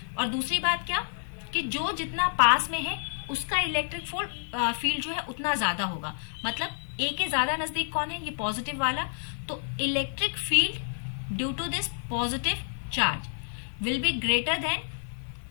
और दूसरी बात क्या, कि जो जितना पास में है उसका इलेक्ट्रिक फील्ड जो है उतना ज्यादा होगा। मतलब ए के ज्यादा नजदीक कौन है, ये पॉजिटिव वाला। तो electric field due to this positive charge will be greater than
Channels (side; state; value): right; silent; digital silence